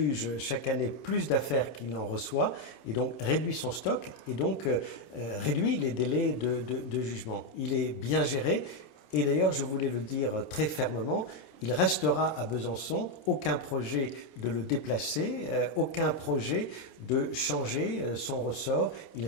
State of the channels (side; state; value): right; late; 26 ms